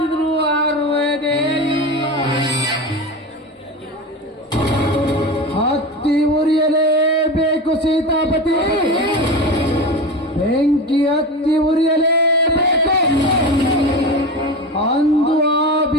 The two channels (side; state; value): both; normal; correlation 0.25